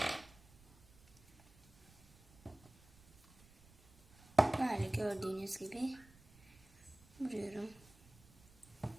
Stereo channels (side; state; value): right; noise; rumble, 26 dB below the sound